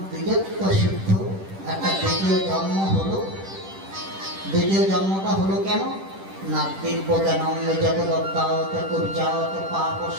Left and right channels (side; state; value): left; late; 10 ms